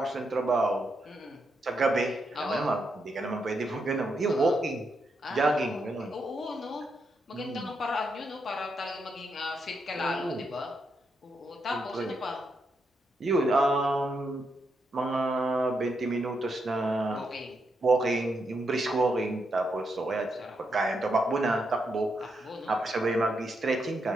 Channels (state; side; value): normal; both; correlation 0.82